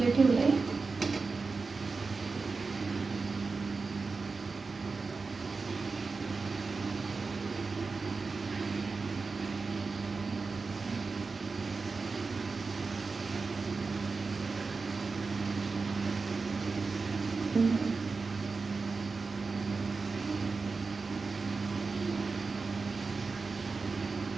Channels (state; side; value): quieter; left; 4.3 dB